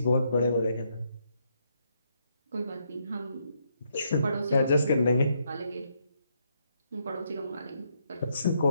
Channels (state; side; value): inverted; both; correlation -0.75